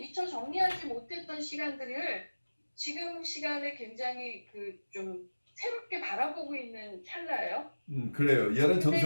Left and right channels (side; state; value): both; inverted; correlation -1.00